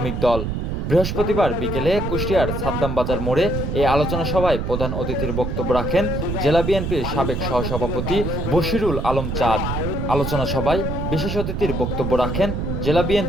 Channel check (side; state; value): right; noise; rumble, 2 dB below the sound